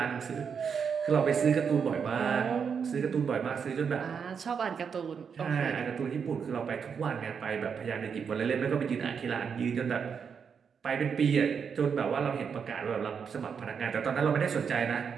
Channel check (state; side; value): quieter; left; 6.6 dB